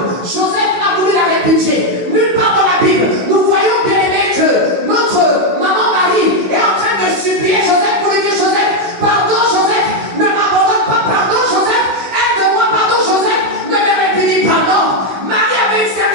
Joseph a voulu la répudier. Nulle part dans la Bible, nous voyons bien aimé que notre maman Marie est en train de supplier Joseph pour lui dire: Joseph, pardon Joseph, ne m'abandonne pas, pardon Joseph, aide-moi, pardon Joseph, ne me répudie pas. Non, Marie avait une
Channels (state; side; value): late; left; 16 ms